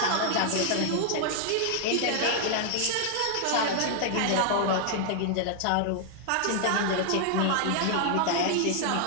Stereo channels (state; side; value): different; both; correlation 0.00